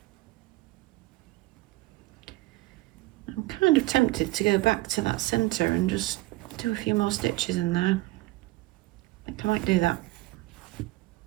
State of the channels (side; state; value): left; quieter; 19.6 dB